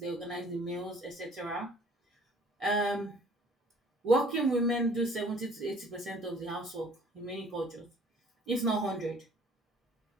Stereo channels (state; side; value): normal; both; correlation 0.54